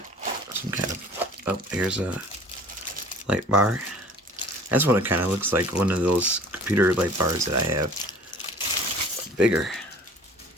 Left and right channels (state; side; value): normal; both; correlation 0.47